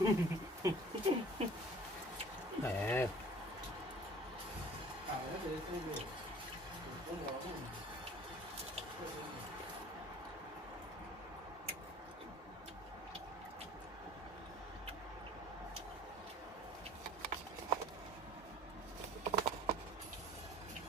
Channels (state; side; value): normal; both; correlation 0.49